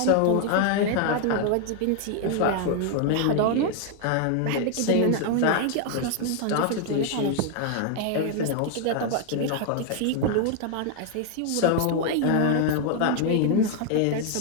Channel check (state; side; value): different; both; correlation 0.00